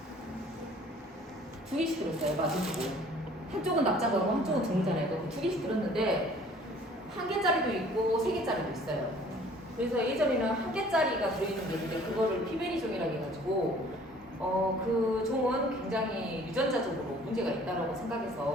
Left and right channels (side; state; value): both; normal; correlation 0.53